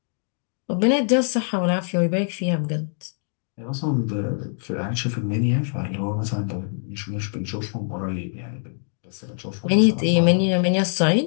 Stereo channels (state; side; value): silent; right; 63 dB below the other